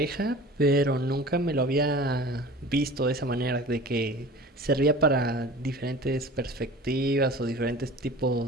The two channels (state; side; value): normal; both; correlation 0.40